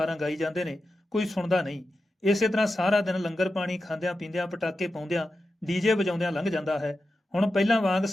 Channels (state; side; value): normal; both; correlation 0.91